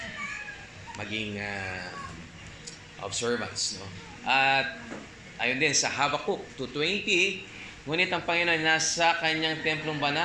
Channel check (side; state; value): both; identical; correlation 1.00